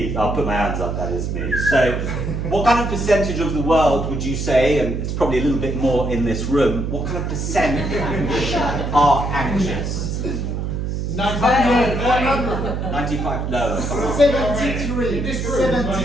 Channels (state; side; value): noise; right; hum, 2 dB below the sound